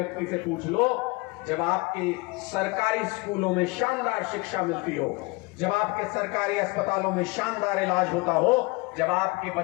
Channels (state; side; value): quieter; right; 25.2 dB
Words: से पूछ लो, जब आपके सरकारी स्कूलों में शानदार शिक्षा मिलती हो, जब आपके सरकारी अस्पतालों में शानदार इलाज होता हो, जब आपके